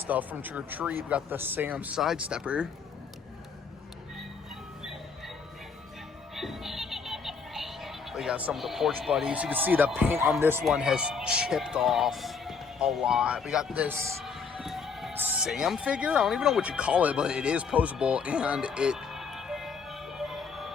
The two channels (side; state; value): right; quieter; 5.5 dB